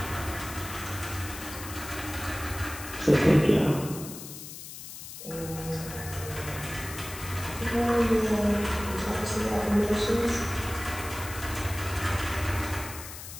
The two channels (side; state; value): left; noise; hiss, 11 dB below the sound